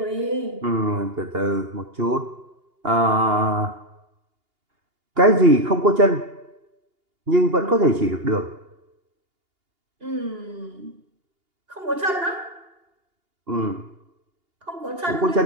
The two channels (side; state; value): left; late; 2.8 ms